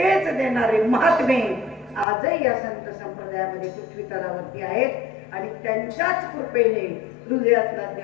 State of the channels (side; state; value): right; drops out; at 2.1 s